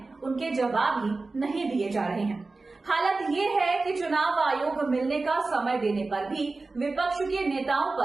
उनके जवाब ही नहीं दिए जा रहे हैं। हालत ये है कि चुनाव आयोग मिलने का समय देने पर भी विपक्ष के नेताओं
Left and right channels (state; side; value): quieter; left; 3.6 dB